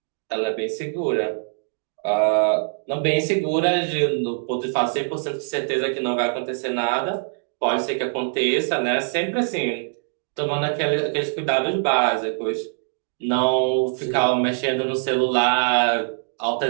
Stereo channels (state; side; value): silent; left; digital silence